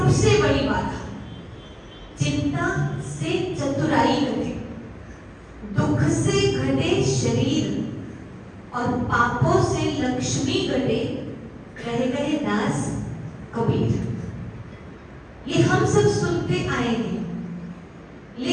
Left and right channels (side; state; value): both; identical; correlation 1.00